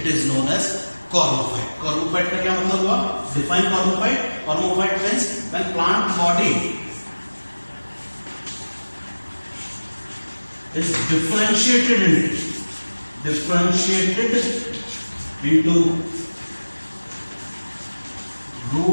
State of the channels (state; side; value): inverted; both; correlation -1.00